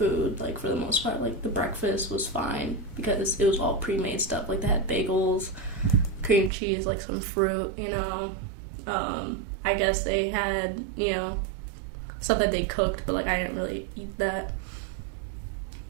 like, for the most part. Like, the breakfast was fine because it was all pre-made stuff. Like, they had bagels, cream cheese, like, some fruit, you know. I guess they had, you know, stuff that they cooked, but, like, I didn't really eat that.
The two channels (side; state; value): left; drops out; at 6.5 s